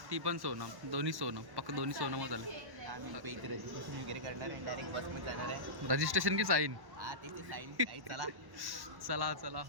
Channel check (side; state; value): left; late; 1.1 ms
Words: ती पण सोनम, दोन्ही सोनम, पक्क दोन्ही सोनमच झाले. आम्ही इथे रजिस्ट्रेशन वगैरे करणार आहे, डायरेक्ट बसमध्ये जाणार आहे. रजिस्ट्रेशन की साईन? हा तेच साईन. चला चला चला.